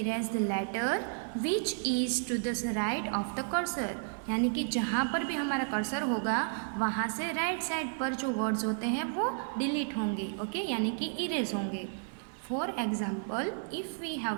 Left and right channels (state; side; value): silent; left; digital silence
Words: the letter which is to the right of the cursor. यानी कि जहाँ पर भी हमारा cursor होगा वहाँ से right side पर जो वर्ड्स होते हैं वो डिलीट होंगे, ओके, यानी कि इरेज होंगे. For example, if we have